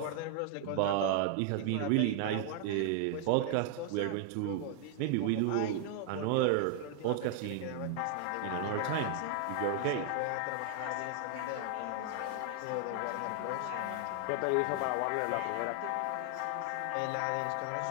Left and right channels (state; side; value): different; both; correlation 0.00